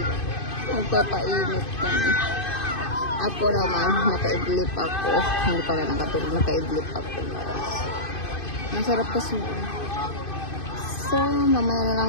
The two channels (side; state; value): right; late; 2.5 ms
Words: Magpapainit kami. Ako naman, nakaidlip ako. Hindi pala nakatulog, nakaidlip ako guys. Masarap kasi. So, mamaya na